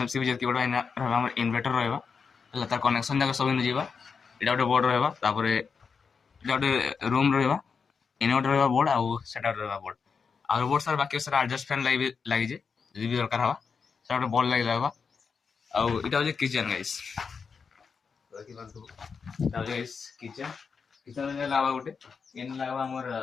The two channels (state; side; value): quieter; right; 5.6 dB